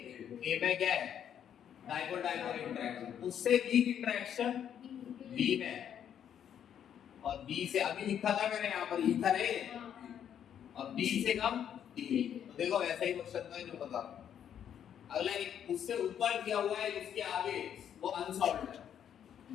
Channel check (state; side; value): quieter; right; 9.2 dB